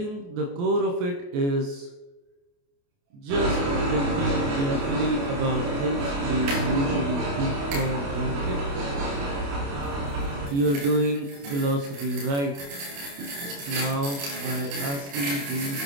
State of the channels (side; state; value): left; late; 28 ms